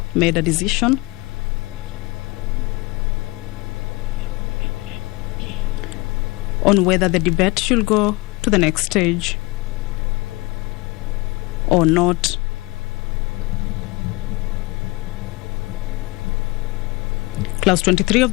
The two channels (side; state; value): right; quieter; 23.2 dB